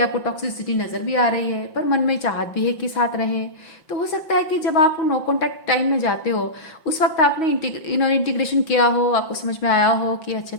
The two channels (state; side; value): late; right; 5.7 ms